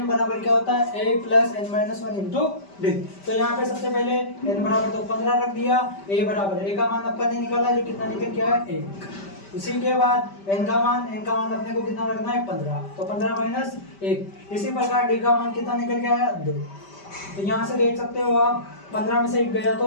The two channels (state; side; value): late; right; 5.1 ms